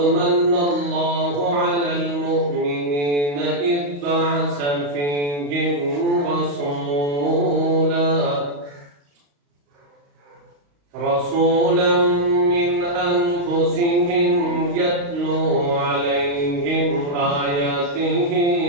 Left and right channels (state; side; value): late; left; 35 ms